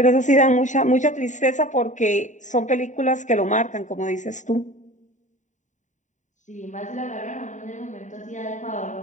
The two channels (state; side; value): late; right; 0.36 ms